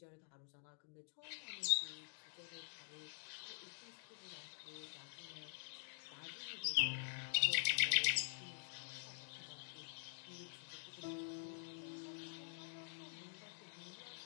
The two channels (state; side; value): silent; right; digital silence